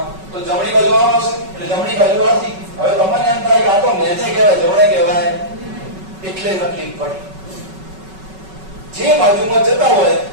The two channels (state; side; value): late; left; 5.3 ms